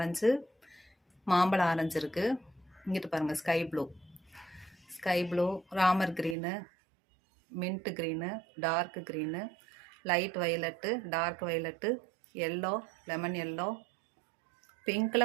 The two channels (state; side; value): drops out; left; at 6.4 s